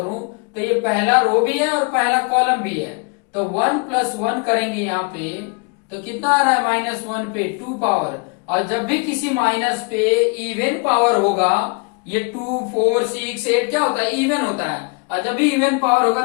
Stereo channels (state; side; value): quieter; right; 33.7 dB